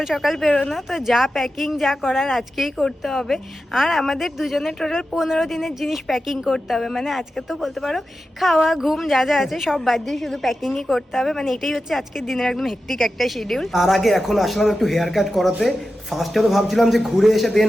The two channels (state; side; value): normal; both; correlation 0.92